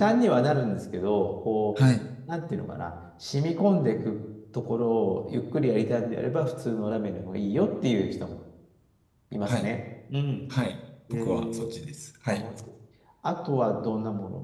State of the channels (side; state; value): both; identical; correlation 1.00